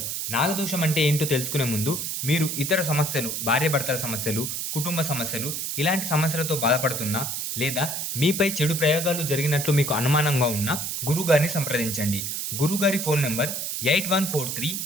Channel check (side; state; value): right; noise; hiss, 3 dB below the sound